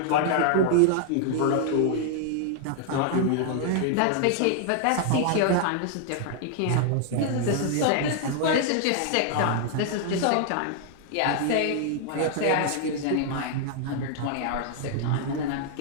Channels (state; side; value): different; both; correlation 0.00